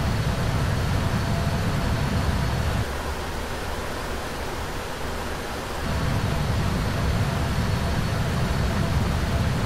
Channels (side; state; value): both; identical; correlation 1.00